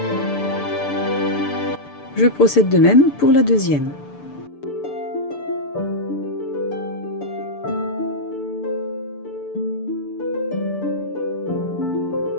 Je procède de même pour la deuxième.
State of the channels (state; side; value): late; right; 6.8 ms